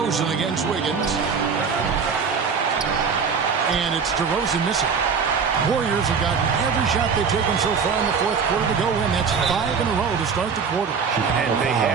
against Wiggins. And it's DeRozan missing. Warriors have gotten every shot they've taken so far in the fourth quarter to go in. That's 5 in a row to start the quarter. And they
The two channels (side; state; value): left; quieter; 5.9 dB